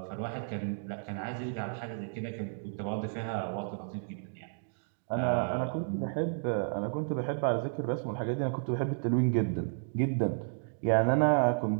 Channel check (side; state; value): left; silent; digital silence